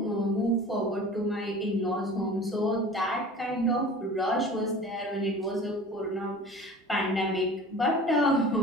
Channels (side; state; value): both; normal; correlation 0.40